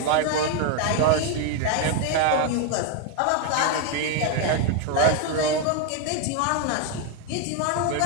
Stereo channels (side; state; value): both; different; correlation 0.01